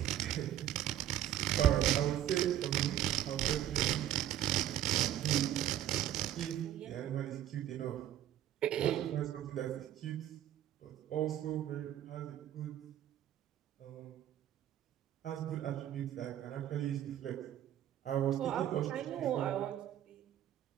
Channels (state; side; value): quieter; left; 11.8 dB